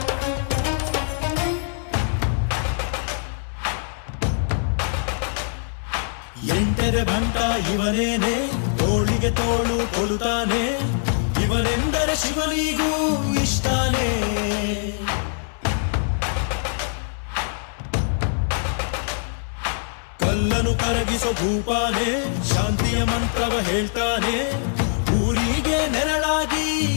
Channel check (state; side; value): silent; right; 63 dB below the other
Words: ಎಂಟರೆ ಭಂಟ ಇವನೇನೆ ತೋಳಿಗೆ ತೋಳು ಕೊಲುತ್ತಾನೆ ಇವನೆಂದರೆ ಶಿವನಿಗೂ ಇಷ್ಟಾನೆ ಕಲ್ಲನು ಕರಗಿಸೋ ಭೂಪಾನೆ ಶಾಂತಿಯ ಮಂತ್ರವ ಹೇಳ್ತಾನೆ ಊರಿಗೆ ನೆರಳಾಗಿ